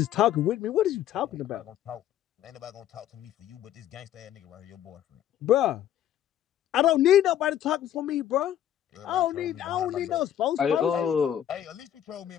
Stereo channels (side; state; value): right; quieter; 11.0 dB